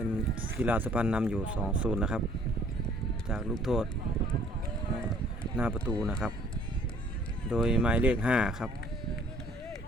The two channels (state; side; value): normal; both; correlation 0.58